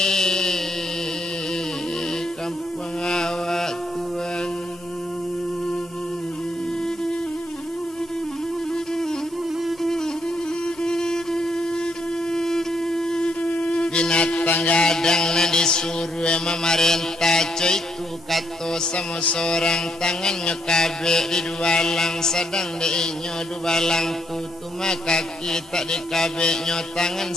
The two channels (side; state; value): both; normal; correlation 0.75